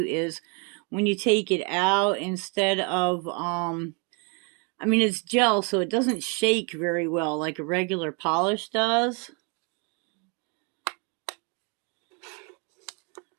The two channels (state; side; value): quieter; left; 34.7 dB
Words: is when you take it out, instead of I mean, it's gel, so it doesn't shake very well like a regular polish does.